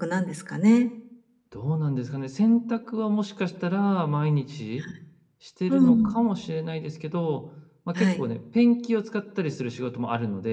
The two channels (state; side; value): identical; both; correlation 1.00